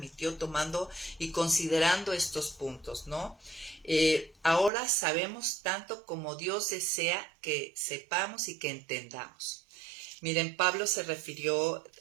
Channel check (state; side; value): drops out; left; at 4.7 s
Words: tomando y considerando estos puntos, ¿no? Ahora sabemos tanto como Dios desea que sepamos y que entendamos. Miren, Pablo se refirió